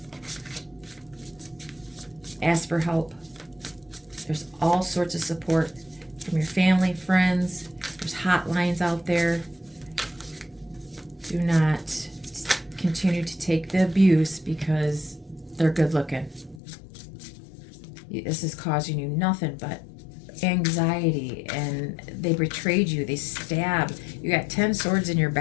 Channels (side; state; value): right; drops out; at 16.6 s